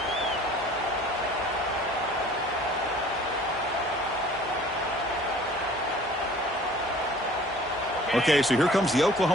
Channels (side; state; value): both; normal; correlation 0.49